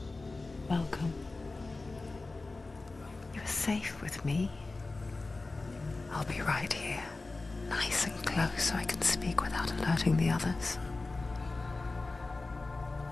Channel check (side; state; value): right; quieter; 3.4 dB